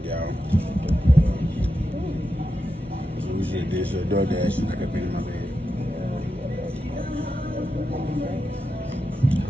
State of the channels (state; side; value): normal; both; correlation 0.88